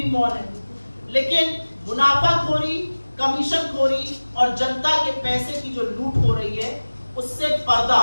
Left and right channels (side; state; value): both; inverted; correlation -1.00